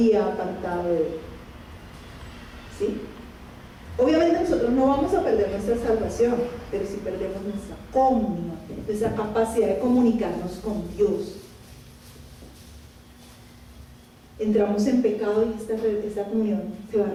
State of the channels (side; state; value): both; identical; correlation 1.00